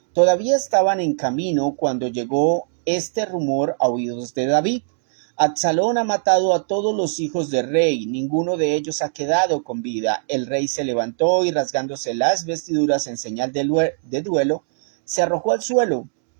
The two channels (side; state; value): left; silent; digital silence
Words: Todavía estaban en camino cuando llegó este rumor a oídos de David: Absalón ha matado a todos los hijos del rey, ninguno de ellos ha quedado con vida. El rey se levantó y, rasgándose las vestiduras en señal de duelo, se arrojó al suelo.